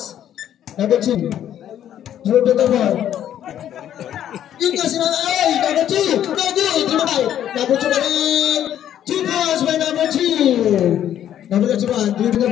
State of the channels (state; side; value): quieter; right; 10.7 dB